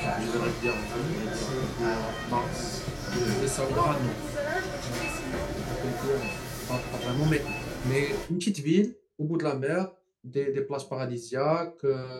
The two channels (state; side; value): identical; both; correlation 1.00